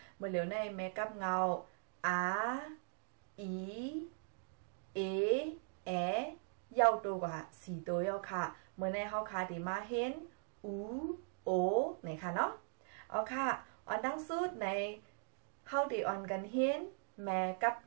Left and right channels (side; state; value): left; silent; digital silence